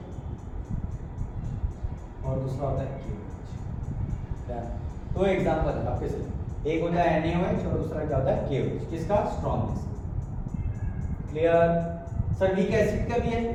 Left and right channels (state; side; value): identical; both; correlation 1.00